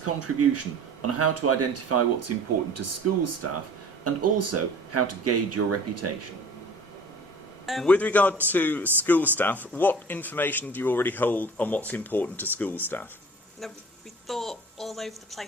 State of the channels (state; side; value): normal; both; correlation 0.45